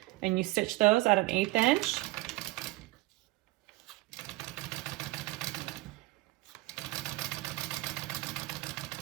And you stitch those at an 1/8 inch.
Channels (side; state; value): left; quieter; 21.0 dB